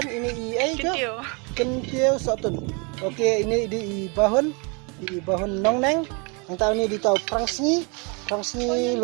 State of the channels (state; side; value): quieter; left; 32.6 dB